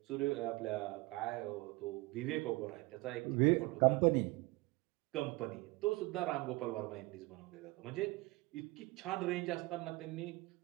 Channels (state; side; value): quieter; left; 22.8 dB